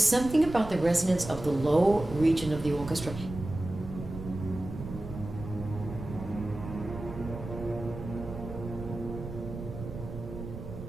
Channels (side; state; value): right; noise; rumble, 10 dB below the sound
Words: about the resonance of the low region of the orchestra.